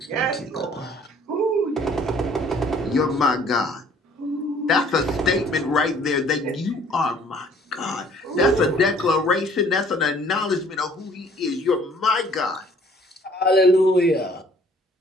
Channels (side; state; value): both; normal; correlation 0.57